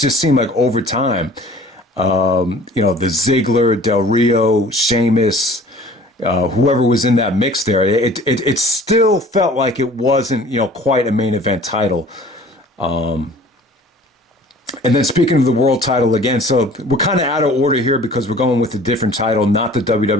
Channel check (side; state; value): both; normal; correlation 0.48